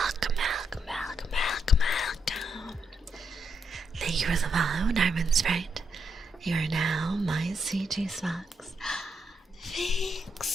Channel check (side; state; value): both; normal; correlation 0.79